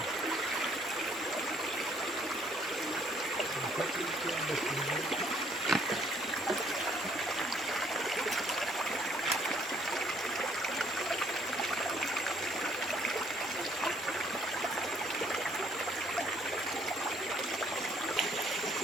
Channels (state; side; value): normal; both; correlation 0.64